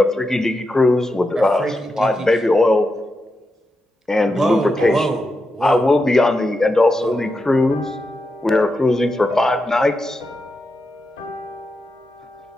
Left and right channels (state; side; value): normal; both; correlation 0.87